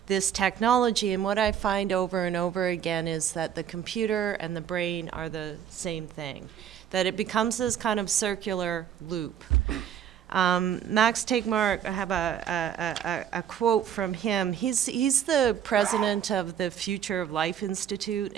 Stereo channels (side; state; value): left; quieter; 9.3 dB